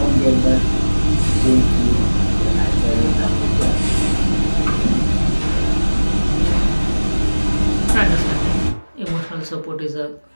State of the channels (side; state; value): both; inverted; correlation -1.00